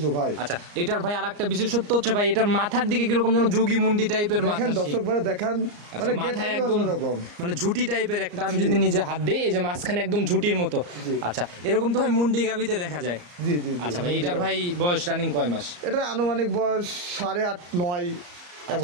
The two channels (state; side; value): late; left; 34 ms